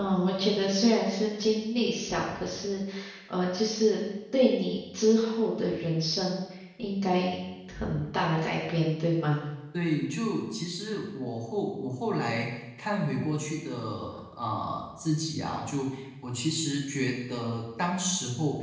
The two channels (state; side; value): identical; both; correlation 1.00